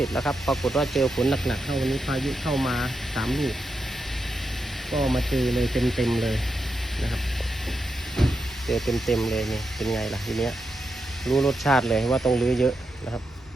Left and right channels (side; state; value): both; normal; correlation 0.86